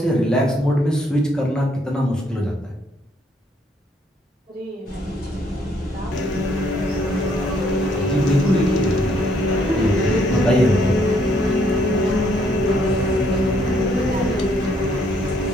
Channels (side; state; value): both; normal; correlation 0.69